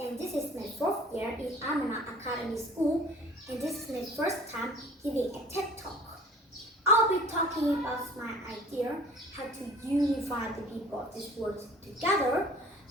is my fourth year in Amana Academy School, and this is my first time giving a TED Talk. I'll be talking about my idea how to unify the people of this world together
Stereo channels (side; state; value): both; normal; correlation 0.47